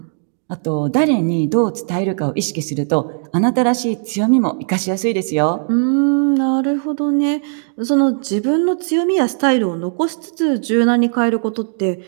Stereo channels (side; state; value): left; silent; digital silence